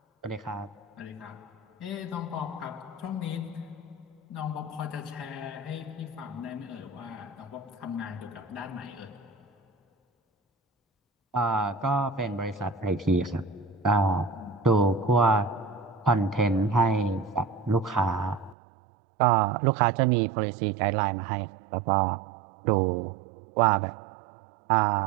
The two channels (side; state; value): left; drops out; at 18.6 s